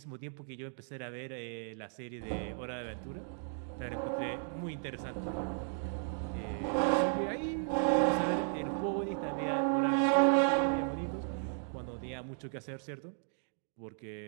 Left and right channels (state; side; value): silent; left; digital silence